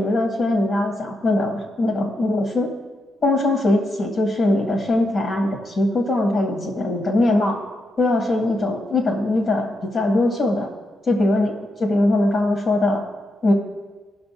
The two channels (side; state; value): both; normal; correlation 0.84